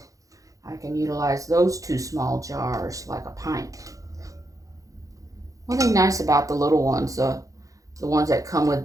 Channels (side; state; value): left; late; 0.16 ms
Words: I can utilize those 2 small jars like a pint. One thing nice about the little ones, the ones that come